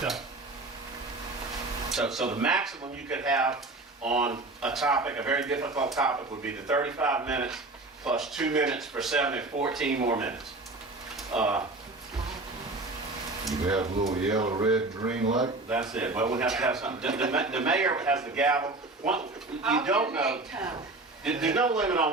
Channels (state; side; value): quieter; left; 3.1 dB